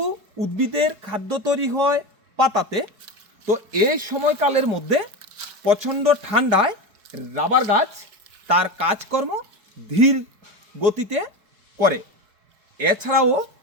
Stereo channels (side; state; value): left; late; 4.7 ms